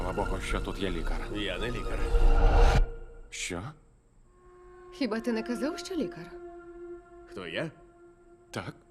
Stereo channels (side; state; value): both; identical; correlation 1.00